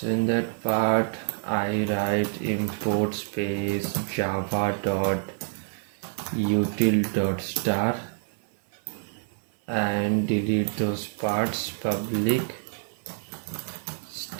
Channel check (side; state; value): left; silent; 60 dB below the other